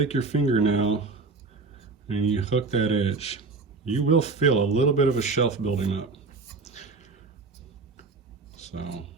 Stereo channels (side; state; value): left; quieter; 4.0 dB